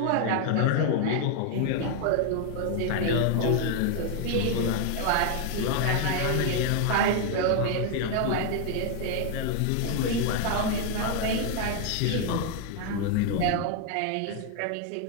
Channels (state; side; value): different; both; correlation 0.01